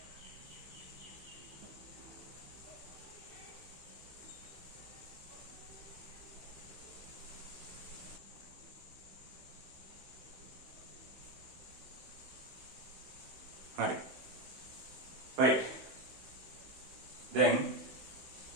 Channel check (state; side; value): late; left; 16 ms